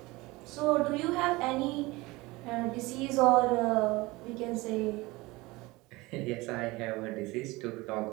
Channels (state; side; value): quieter; left; 21.9 dB